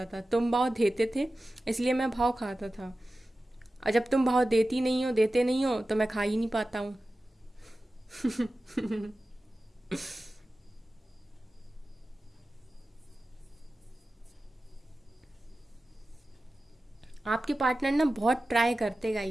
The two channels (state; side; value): normal; both; correlation 0.95